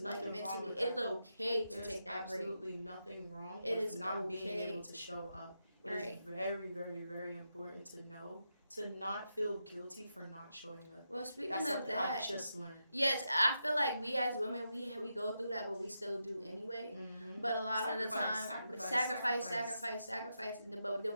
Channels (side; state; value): both; inverted; correlation -0.86